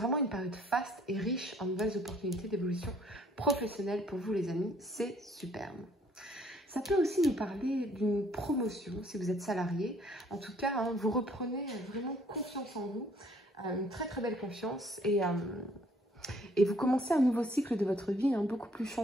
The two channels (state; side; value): normal; both; correlation 0.62